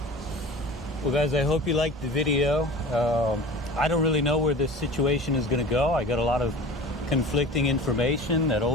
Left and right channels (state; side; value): normal; both; correlation 0.38